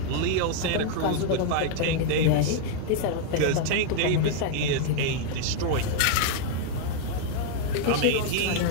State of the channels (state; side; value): different; both; correlation 0.00